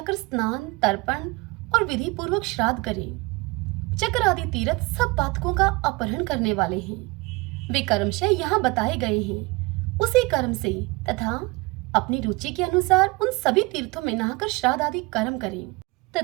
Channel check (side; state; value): left; quieter; 24.8 dB